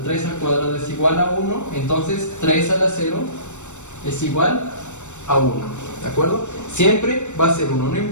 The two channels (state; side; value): late; right; 0.84 ms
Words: al cuadrado es igual a 1, entonces 3 a la 0 es igual a 1, ¿de acuerdo? Siempre va a ser 1, no